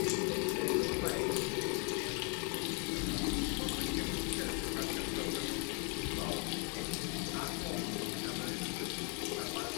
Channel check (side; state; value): right; quieter; 36.9 dB